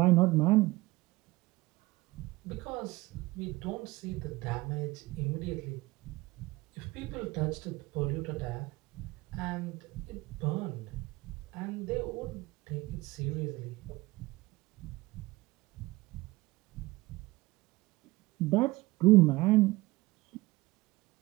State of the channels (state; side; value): quieter; left; 20.6 dB